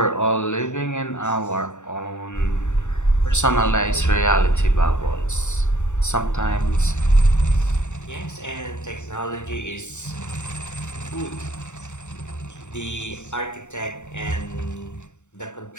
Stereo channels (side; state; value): right; late; 0.84 ms